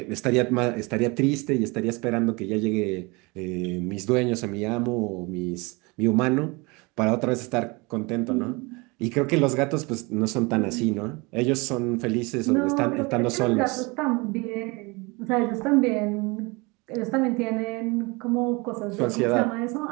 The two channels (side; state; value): left; quieter; 26.7 dB